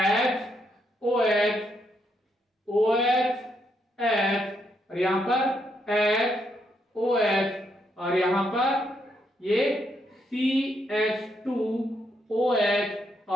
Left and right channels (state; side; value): normal; both; correlation 0.77